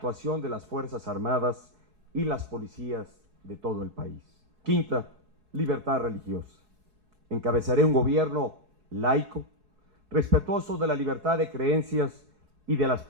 de las Fuerzas Armadas y las policías de todo el país. Quinta, libertad religiosa. Encabezaré un gobierno laico, respetuoso de la libertad de creencias y de las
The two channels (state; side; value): late; left; 4.7 ms